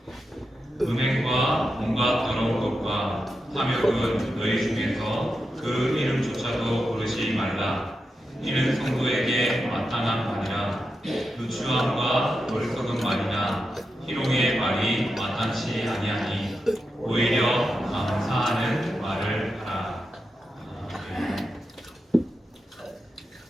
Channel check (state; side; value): normal; both; correlation 0.88